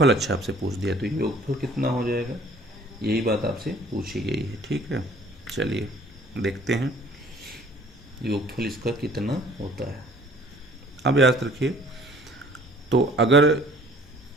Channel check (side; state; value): both; normal; correlation 0.54